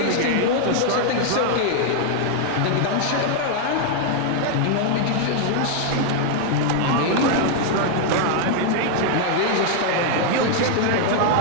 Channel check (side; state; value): both; different; correlation 0.00